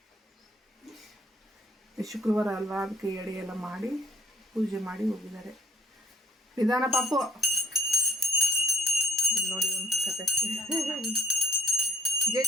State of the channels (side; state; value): both; normal; correlation 0.60